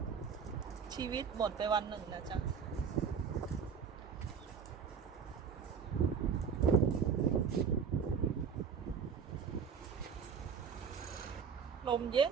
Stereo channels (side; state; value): left; quieter; 6.6 dB